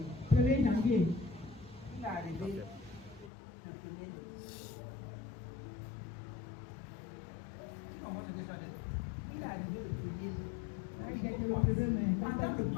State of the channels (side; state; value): right; drops out; at 3.3 s